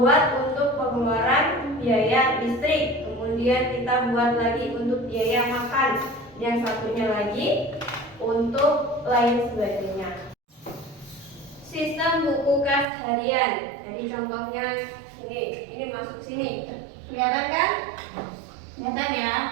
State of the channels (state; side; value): drops out; left; at 12.9 s